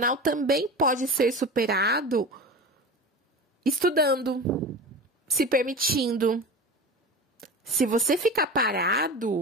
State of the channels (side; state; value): both; normal; correlation 0.31